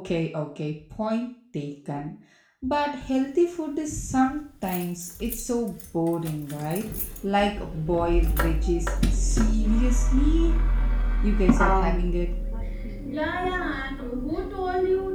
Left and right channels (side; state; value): both; identical; correlation 1.00